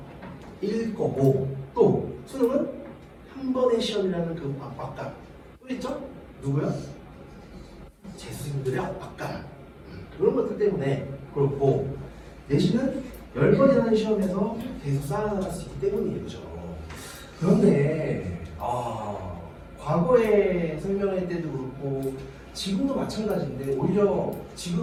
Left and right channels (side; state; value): both; identical; correlation 1.00